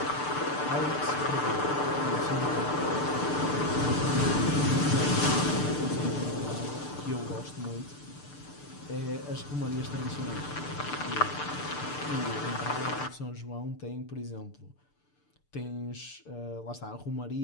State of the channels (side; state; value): right; late; 6.8 ms